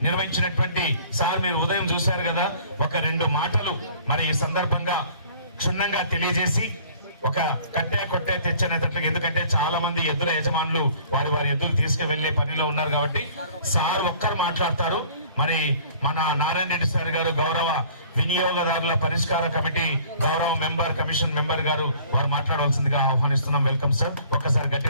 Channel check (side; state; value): both; inverted; correlation -0.53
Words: నిర్వహించినటువంటి సార్ మీరు ఉదయం చూశారు కదా, ఒక 2 మాటలు మరి ఈ సందర్భంగా క్షుణ్ణంగా తెలియజేసి ఒక కట్టే కొట్టే తెచ్చనేటట్లుగా, ఎందుకంటే చాలా మంది ఎద్దుల యజమానులు వారి ఎద్దులు తీసుకువెళ్లే పనిలో ఉన్నారు కాబట్టి సార్ ఒక్కరు మాట్లాడతారు. మరి మన నారాయణ రెడ్డి సార్ గారు గౌరవ వినియోగదారుల పరిష్కార కమిటీ గౌరవ కమిషన్ మెంబర్ గారు వారు మాట్లాడవలసిందిగా ఆహ్వానిస్తున్నాం. Welcome sir. ఒక్కసారి